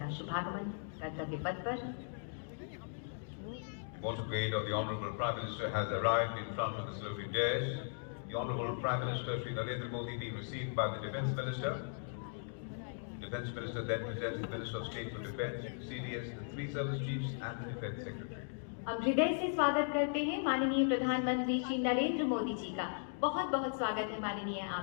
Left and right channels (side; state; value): right; silent; digital silence